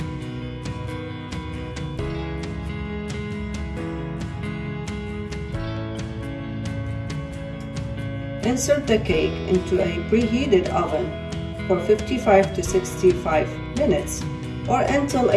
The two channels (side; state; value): both; identical; correlation 1.00